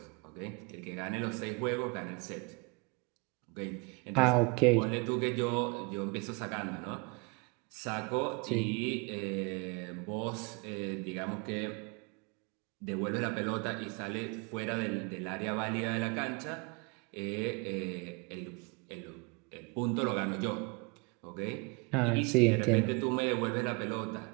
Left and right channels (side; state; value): left; quieter; 30.8 dB